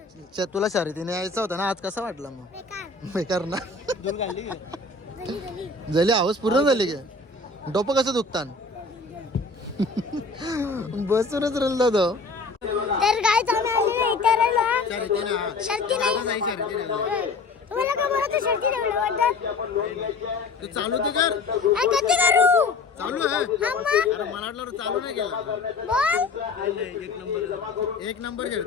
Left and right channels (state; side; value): quieter; right; 3.8 dB